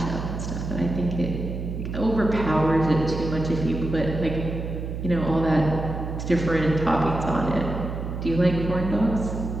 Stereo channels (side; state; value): right; noise; hum, 5 dB below the sound